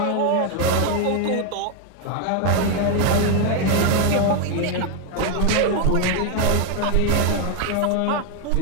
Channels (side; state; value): both; different; correlation 0.01